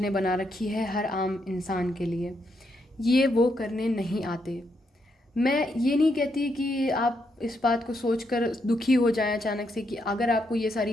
ने बना रखी है हर आम इंसान के लिए, ये वो करने नहीं आते। मैं ये नहीं कहती कि आप इस बात को सोचकर दुखी हो जाएं अचानक से, कि अगर आपको ये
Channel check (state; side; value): normal; both; correlation 0.79